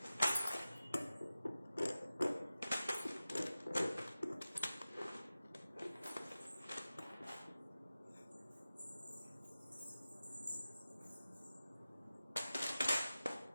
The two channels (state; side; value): inverted; both; correlation -0.95